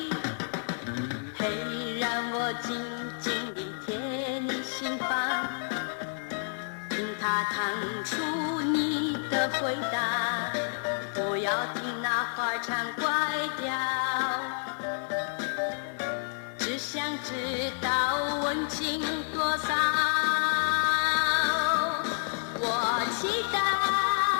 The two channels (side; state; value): right; silent; 58 dB below the other